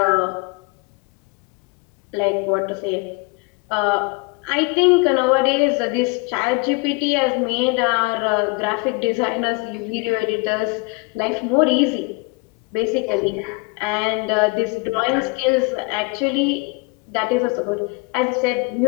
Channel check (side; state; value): right; quieter; 28.2 dB